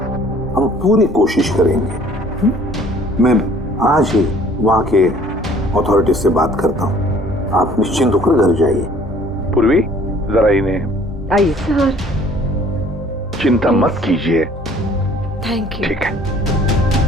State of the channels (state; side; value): normal; both; correlation 0.55